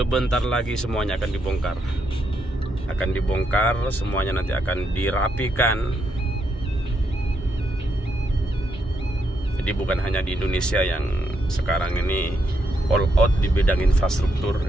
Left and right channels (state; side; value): normal; both; correlation 0.78